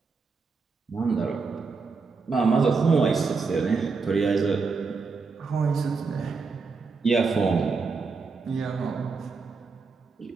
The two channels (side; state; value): left; quieter; 4.6 dB